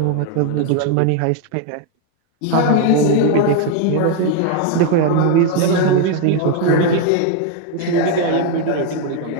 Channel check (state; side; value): different; both; correlation 0.01